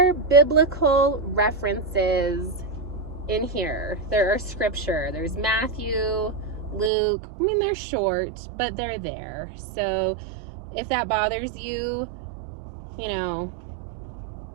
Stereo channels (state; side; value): drops out; left; at 6.9 s